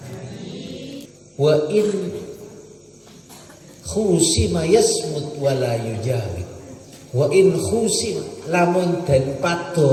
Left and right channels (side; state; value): both; identical; correlation 1.00